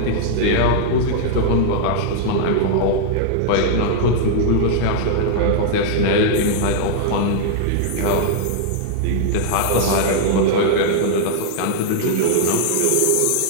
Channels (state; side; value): different; both; correlation -0.01